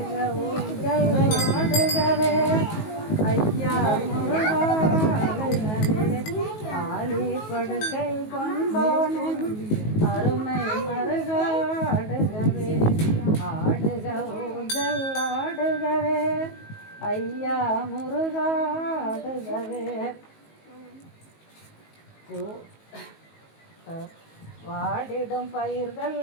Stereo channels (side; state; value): right; late; 19 ms